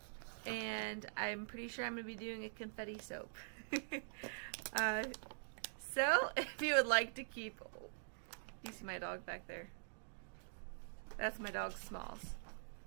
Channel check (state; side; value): silent; left; digital silence